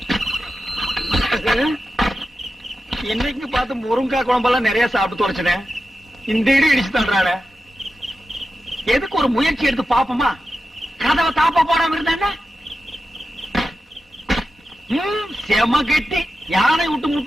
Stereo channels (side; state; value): both; normal; correlation 0.91